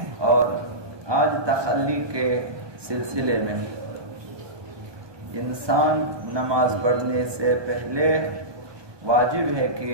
اور آج تخلی کے سلسلے میں انسان نماز پڑھنے سے پہلے واجب ہے کہ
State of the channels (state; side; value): late; left; 1.2 ms